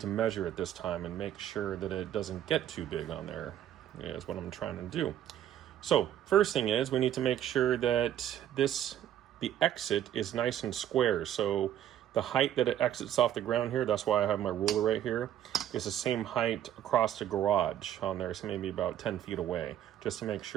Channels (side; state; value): left; quieter; 11.0 dB